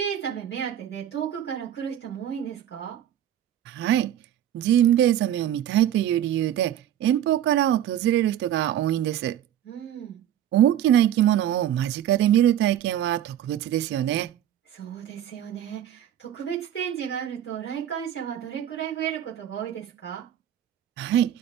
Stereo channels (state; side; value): quieter; left; 11.1 dB